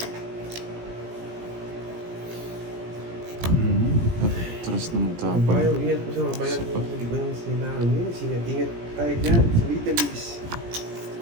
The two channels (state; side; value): late; left; 17 ms